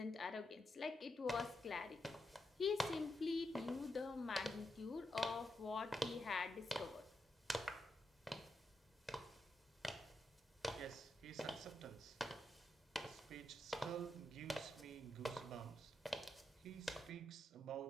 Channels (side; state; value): both; normal; correlation 0.84